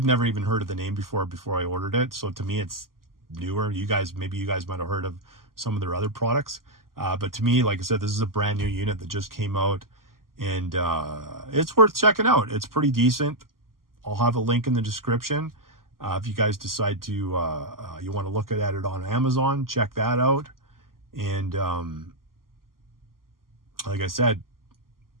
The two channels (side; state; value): left; late; 0.92 ms